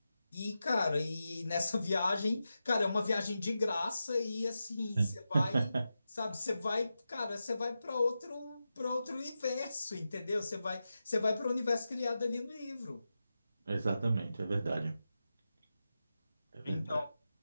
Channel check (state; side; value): inverted; both; correlation -0.90